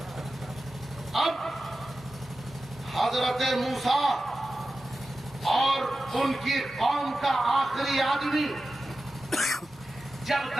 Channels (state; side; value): normal; both; correlation 0.93